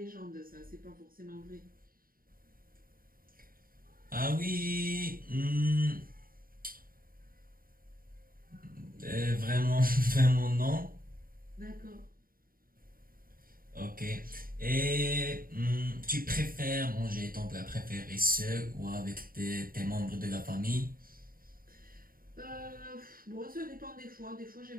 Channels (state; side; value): late; left; 0.41 ms